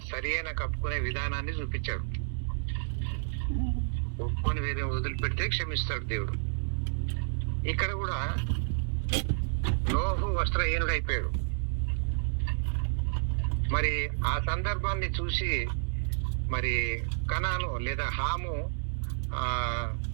సరి అయిన కప్పుకునే విధానాన్ని చూపించాడు. ఒప్పుకొని వేరే వదిలిపెడితే క్షమిస్తాడు దేవుడు. ఇక్కడ కూడా నోహు వస్త్రహీనుడు అయిపోయాడు. మరి ఆ సందర్భాన్ని చూసి మరి కనాను లేదా హాము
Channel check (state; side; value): silent; left; digital silence